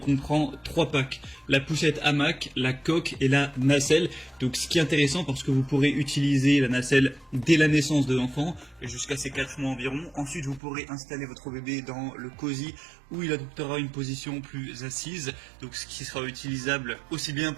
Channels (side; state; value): left; drops out; at 10.6 s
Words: 3 packs. La poussette hamac, la coque et la nacelle. Donc ce qui est intéressant parce que vous pourrez utiliser la nacelle dès la naissance de l'enfant, jusqu'à ses 4 mois environ. Ensuite vous pourrez installer votre bébé dans le cosy où il adoptera une position plus assise. Donc ce qui sera utilisable aussi bien